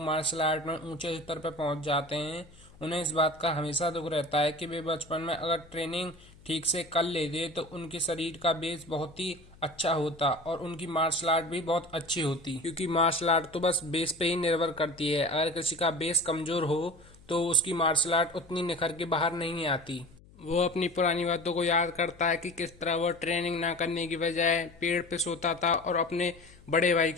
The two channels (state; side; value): noise; left; hum, 25 dB below the sound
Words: मार्शल आर्ट में ऊंचे स्तर पर पहुंच जाते हैं उन्हें इस बात का हमेशा दुख रहता है कि वे बचपन में अगर ट्रेनिंग ठीक से कर लेते तो उनके शरीर का बेस बहुत ही अच्छा होता और उनकी मार्शल आर्ट भी बहुत अच्छी होती, क्योंकि मार्शल आर्ट तो बस बेस पे ही निर्भर करती है। अगर किसी का बेस कमजोर हो तो उसकी मार्शल आर्ट उतनी निखर के बाहर नहीं आती। वो अपनी पुरानी बातों को याद करता है कि किस तरह वो ट्रेनिंग ना करने की बजाय पेड़ पे सोता था और अपने बड़े भाई